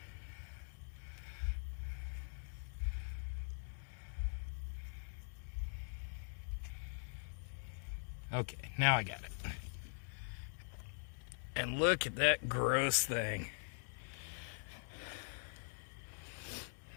Okay, now I got it. And look at that gross thing.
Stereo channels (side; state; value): right; silent; digital silence